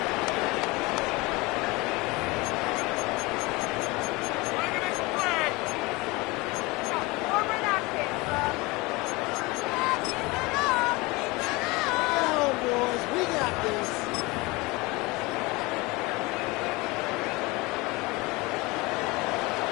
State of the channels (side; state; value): right; quieter; 23.8 dB